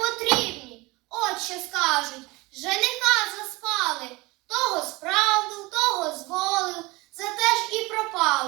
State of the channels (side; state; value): left; quieter; 22.9 dB